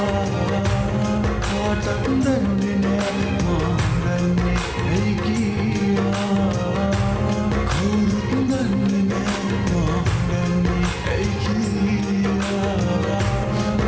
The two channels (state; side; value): identical; both; correlation 1.00